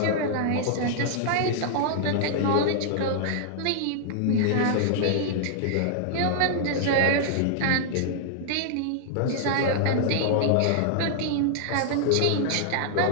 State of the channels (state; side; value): different; both; correlation -0.01